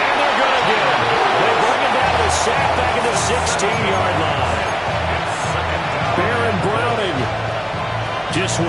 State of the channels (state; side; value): identical; both; correlation 1.00